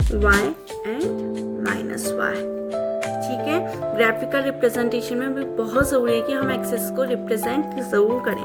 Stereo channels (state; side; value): identical; both; correlation 1.00